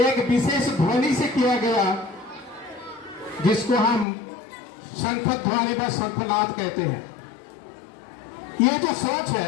विशेष ध्वनि से किया गया, जिसको हम शंख ध्वनि व शंखनाद कहते हैं। ये जो सोच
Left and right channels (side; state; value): right; drops out; at 4.0 s